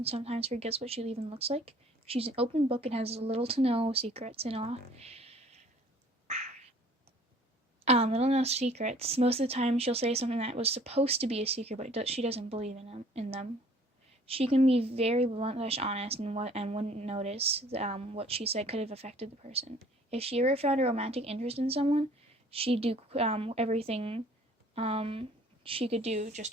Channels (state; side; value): normal; both; correlation 0.54